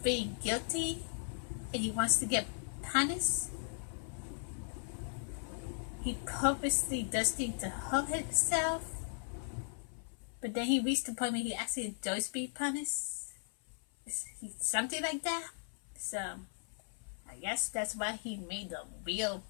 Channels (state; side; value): silent; right; 53 dB below the other